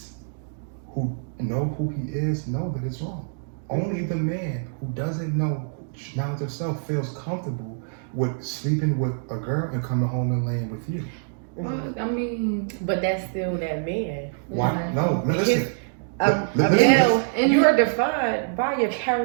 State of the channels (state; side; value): silent; left; digital silence